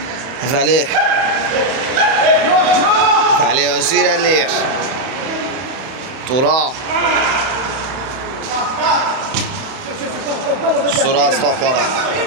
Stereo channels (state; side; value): late; left; 31 ms